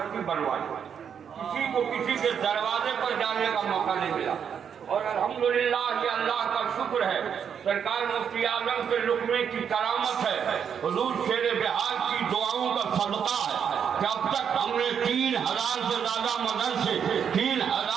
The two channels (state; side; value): quieter; left; 7.7 dB